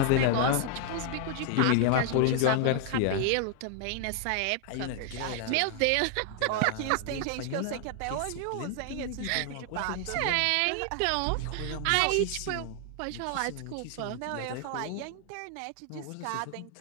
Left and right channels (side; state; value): both; different; correlation 0.00